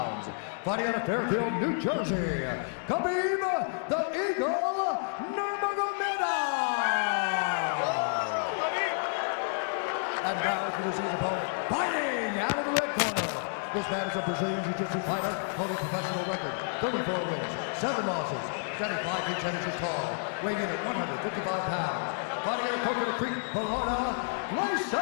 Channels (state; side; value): silent; right; digital silence